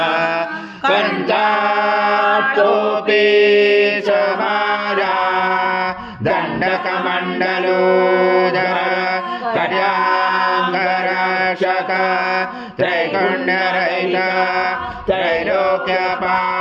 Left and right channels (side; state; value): both; identical; correlation 1.00